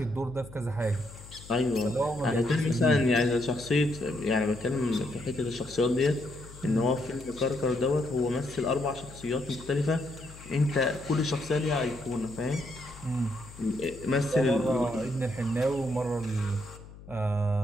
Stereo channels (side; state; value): left; noise; hum, 18 dB below the sound